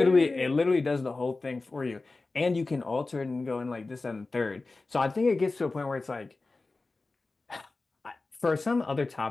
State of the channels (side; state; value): right; quieter; 3.5 dB